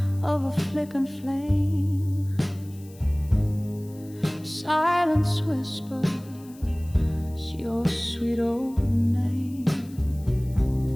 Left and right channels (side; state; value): left; noise; hiss, 25 dB below the sound